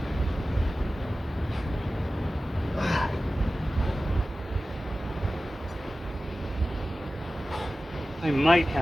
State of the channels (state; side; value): normal; both; correlation 0.96